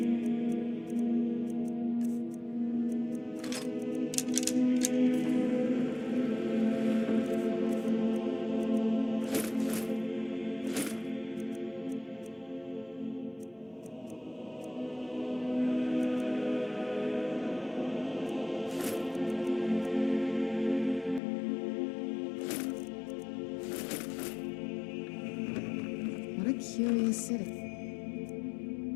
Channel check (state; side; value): drops out; right; at 21.2 s